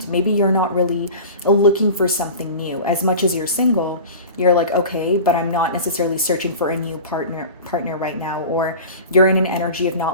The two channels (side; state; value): both; inverted; correlation -0.35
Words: Maybe you're not really looking for something new. As much as you're single, you're like, okay, but I'm not necessarily searching for a new partner right now, or you're in an energy of